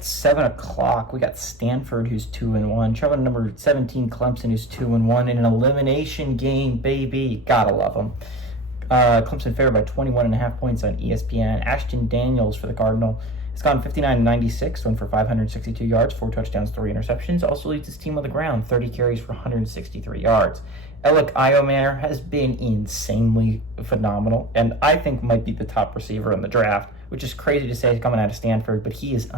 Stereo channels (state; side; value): normal; both; correlation 0.36